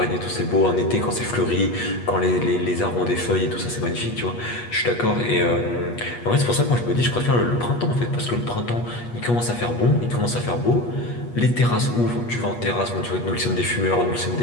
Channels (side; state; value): right; late; 8.4 ms